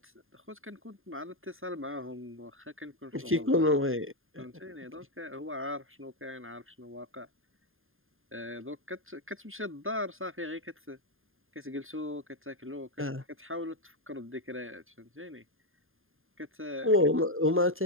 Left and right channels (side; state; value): left; late; 0.59 ms